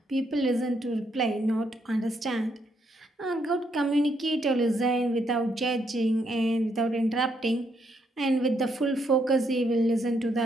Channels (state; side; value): normal; both; correlation 0.75